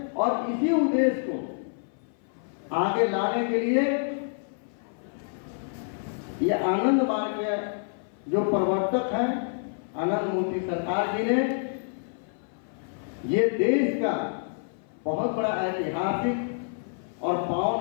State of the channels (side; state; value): right; silent; 56 dB below the other